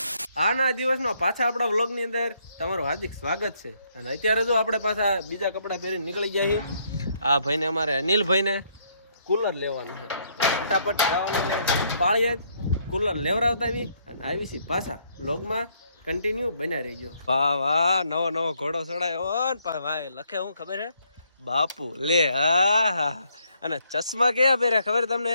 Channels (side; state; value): both; inverted; correlation -0.71